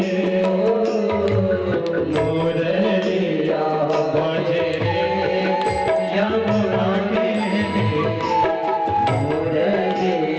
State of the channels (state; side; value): identical; both; correlation 1.00